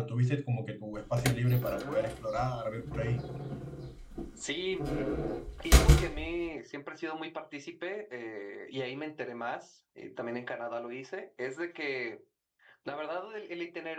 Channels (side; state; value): both; identical; correlation 1.00